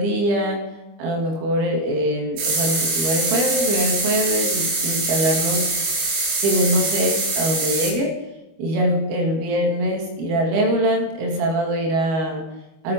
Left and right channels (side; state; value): left; late; 25 ms